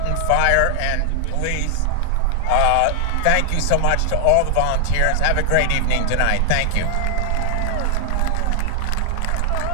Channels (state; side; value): different; both; correlation 0.00